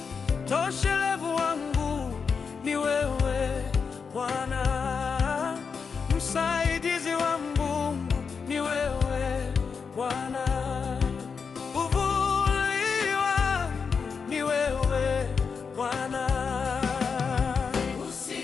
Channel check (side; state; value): right; quieter; 5.7 dB